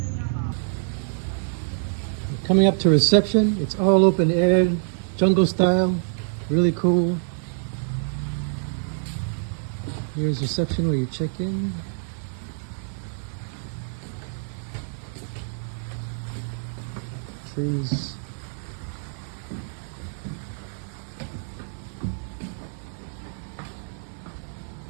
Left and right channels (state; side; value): silent; left; digital silence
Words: Coming up to reception, it's all open air, jungle style, really cool. Here's reception where you check in. Trees.